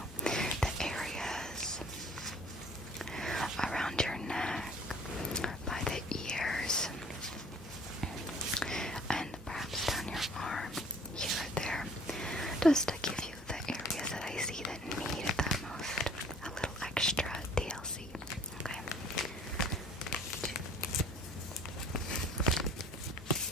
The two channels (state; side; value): normal; both; correlation 0.53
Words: the areas around your neck, by the ears, and perhaps down your arm, here or there, just to give you the areas that I see that need it the most. A little extra TLC, okay?